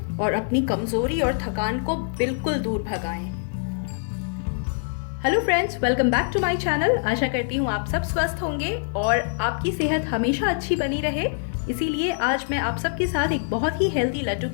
और अपनी कमज़ोरी और थकान को बिल्कुल दूर भगाएं। Hello friends, welcome back to my channel. आशा करती हूँ आप सब स्वस्थ होंगे और आपकी सेहत हमेशा अच्छी बनी रहे। इसीलिए आज मैं आप सबके साथ एक बहुत ही हेल्दी लड्डू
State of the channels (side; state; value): right; silent; digital silence